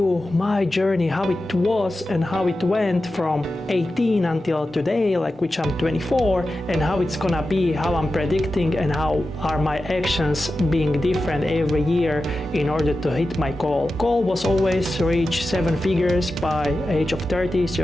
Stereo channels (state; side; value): normal; both; correlation 0.92